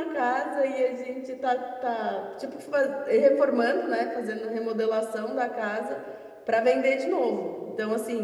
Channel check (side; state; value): both; identical; correlation 1.00